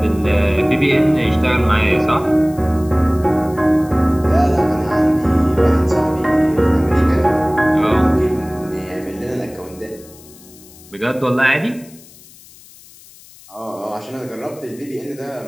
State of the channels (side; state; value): left; noise; hiss, 23 dB below the sound